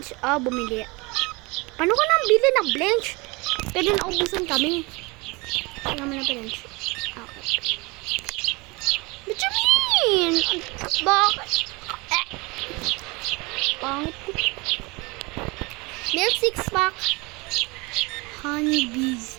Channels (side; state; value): left; quieter; 26.1 dB